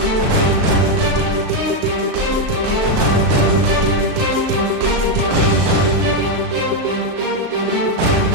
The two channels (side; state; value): left; late; 37 ms